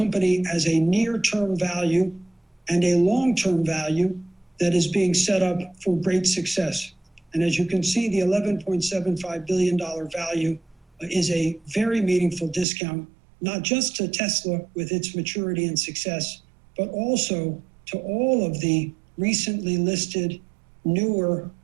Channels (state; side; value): drops out; left; at 12.7 s